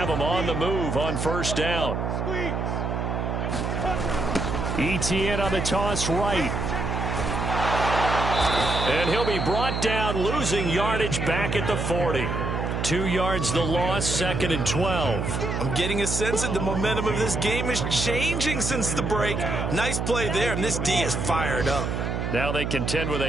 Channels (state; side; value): noise; right; hum, 1 dB below the sound